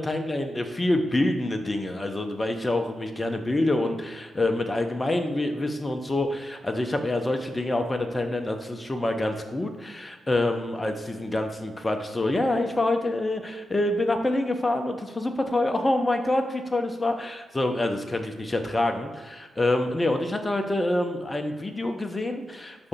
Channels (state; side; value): normal; both; correlation 0.91